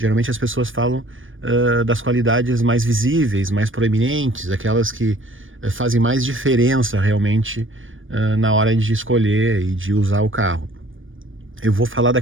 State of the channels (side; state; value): left; late; 0.57 ms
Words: as pessoas falam das qualidades mais visíveis, mais proeminentes, aquelas que fazem mais diferença realmente na hora de escolher e de usar o carro. Eu vou falar